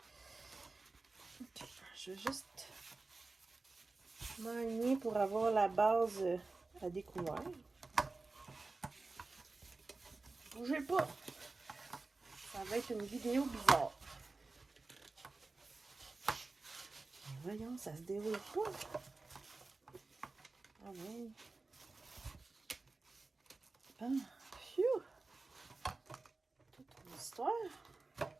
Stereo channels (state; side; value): quieter; left; 3.6 dB